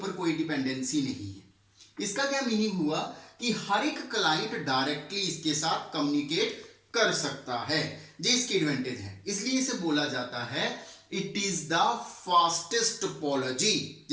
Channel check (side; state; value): both; identical; correlation 1.00